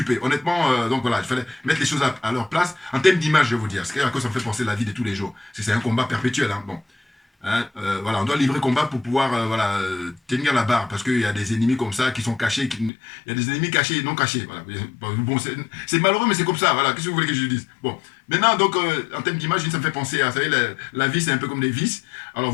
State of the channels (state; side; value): drops out; right; at 12.9 s